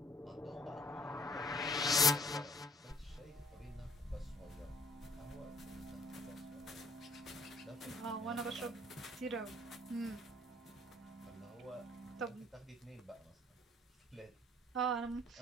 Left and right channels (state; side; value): normal; both; correlation 0.60